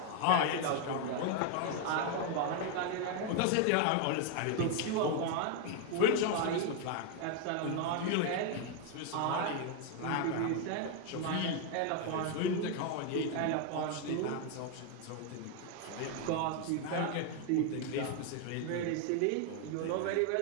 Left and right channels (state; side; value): different; both; correlation 0.01